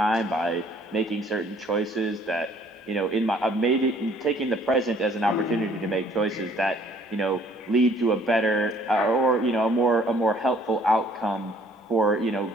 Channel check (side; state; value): both; normal; correlation 0.59